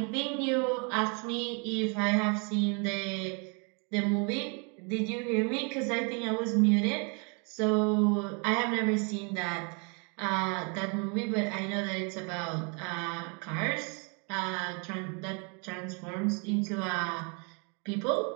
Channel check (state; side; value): quieter; left; 35.1 dB